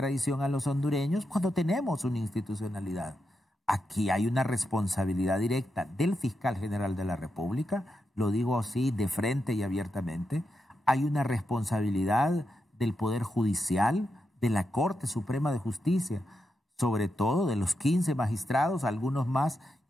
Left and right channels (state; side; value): normal; both; correlation 0.86